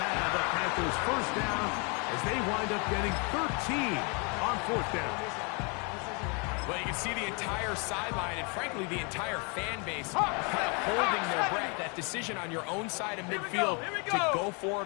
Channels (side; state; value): right; quieter; 33.4 dB